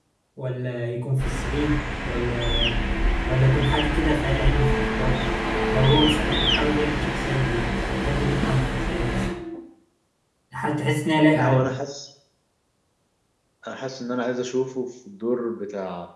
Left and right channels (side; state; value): both; identical; correlation 1.00